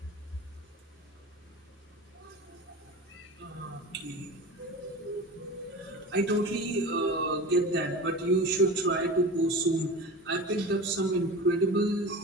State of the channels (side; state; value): both; normal; correlation 0.32